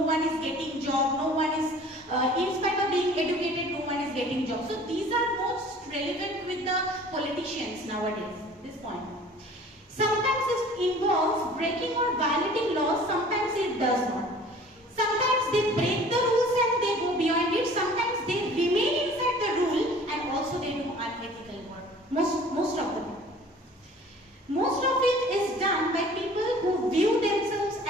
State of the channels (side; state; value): both; normal; correlation 0.48